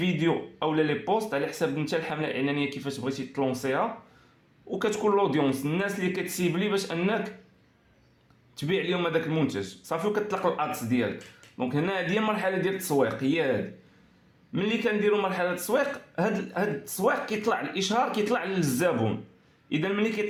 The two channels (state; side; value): identical; both; correlation 1.00